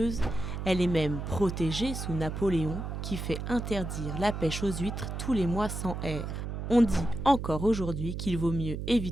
elle est même protégée sous Napoléon, qui fait interdire la pêche aux huîtres tous les mois sans air. On dit encore aujourd'hui qu'il vaut mieux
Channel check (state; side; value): noise; right; hum, 5 dB below the sound